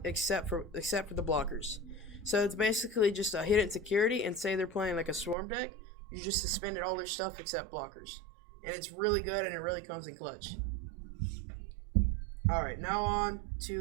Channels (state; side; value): drops out; left; at 5.4 s